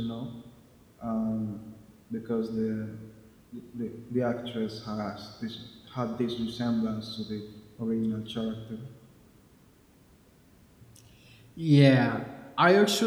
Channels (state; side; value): identical; both; correlation 1.00